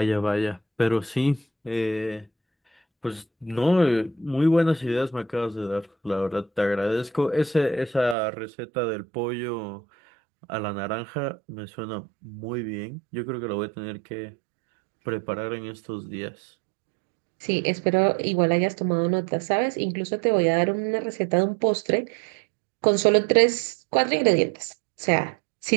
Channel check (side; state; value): left; drops out; at 8.2 s